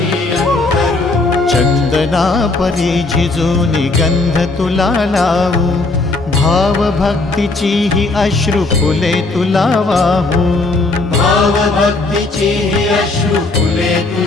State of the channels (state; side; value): quieter; right; 3.3 dB